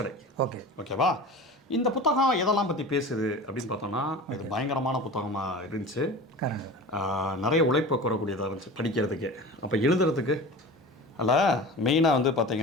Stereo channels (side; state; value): both; normal; correlation 0.35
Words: ஓகேவா? இந்த புத்தகம் எதெல்லாம் பற்றி பேசுது அப்படின்னு பார்த்தோன்னா, இது பயங்கரமான புத்தகமாக இருந்துச்சு. நிறைய உழைப்பை கூறக்கூடியதாக இருந்துச்சு படிக்கிறதுக்கு. அப்போ எழுதுறதுக்கு அதில் மெயினாக வந்து